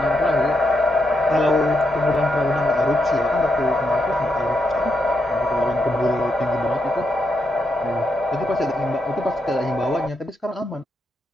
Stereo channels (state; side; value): normal; both; correlation 0.81